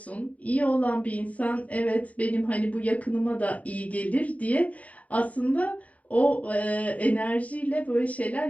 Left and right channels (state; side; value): late; right; 0.069 ms